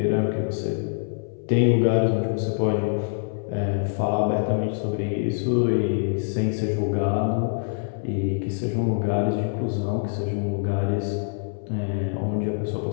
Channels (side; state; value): right; silent; 62 dB below the other